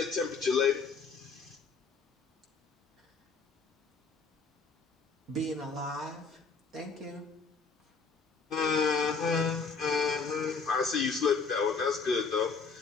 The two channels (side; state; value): right; quieter; 4.9 dB